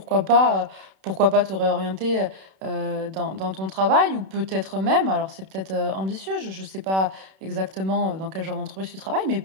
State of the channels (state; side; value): late; left; 31 ms